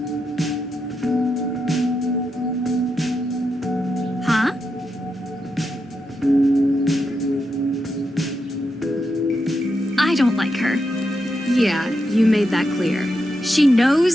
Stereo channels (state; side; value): normal; both; correlation 0.85